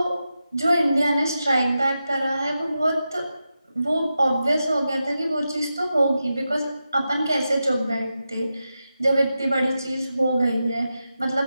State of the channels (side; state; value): both; inverted; correlation -0.90